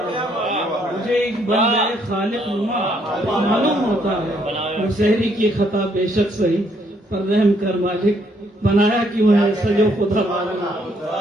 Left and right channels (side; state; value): both; normal; correlation 0.70